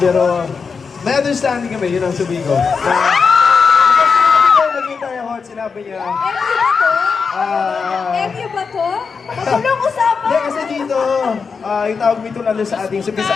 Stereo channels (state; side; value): quieter; right; 5.4 dB